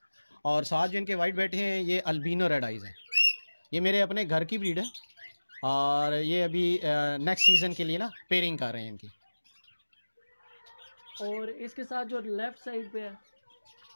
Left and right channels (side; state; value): both; inverted; correlation -1.00